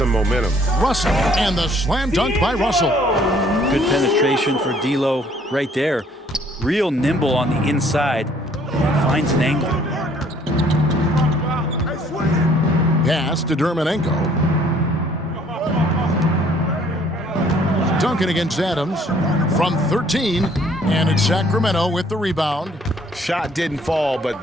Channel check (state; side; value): normal; both; correlation 0.60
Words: momentum. Russell, and the slam dunk by Russell. Good penetration for D'Lo right there. Real nimble on the inside. Finds an angle. Pass to Dermanenko. Duncan against Adams from 13. And it's Sacramento with the rebound. Shot didn't fall,